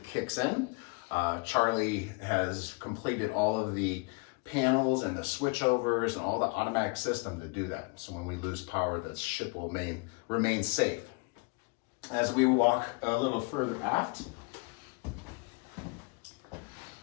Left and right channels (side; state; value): right; quieter; 31.5 dB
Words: kicks in. Charlie has completed all of the panels and the switchovers and all the automatic system to do that. So when we lose power, the ship will remain safe. As we walk a little further aft,